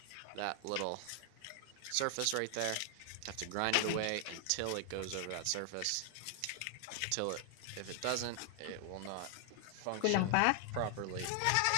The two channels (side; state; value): both; different; correlation 0.00